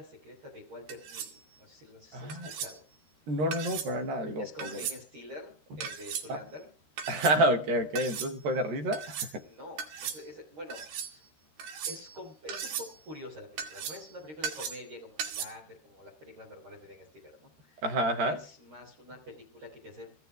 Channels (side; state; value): left; late; 13 ms